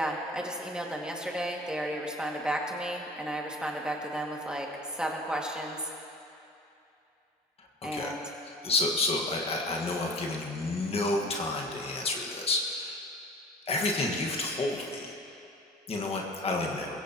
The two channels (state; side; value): normal; both; correlation 0.43